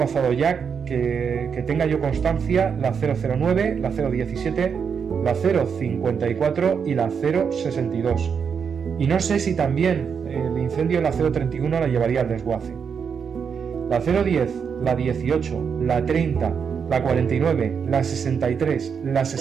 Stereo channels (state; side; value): quieter; left; 6.6 dB